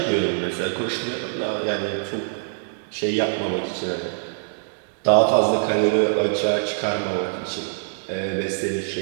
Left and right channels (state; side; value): silent; left; digital silence